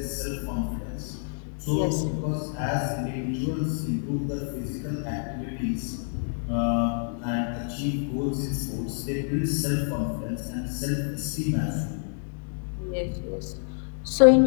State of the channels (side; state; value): right; silent; digital silence